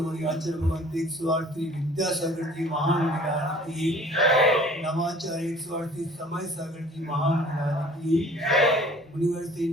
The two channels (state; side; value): normal; both; correlation 0.50